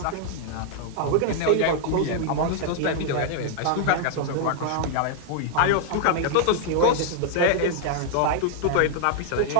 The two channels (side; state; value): both; different; correlation -0.01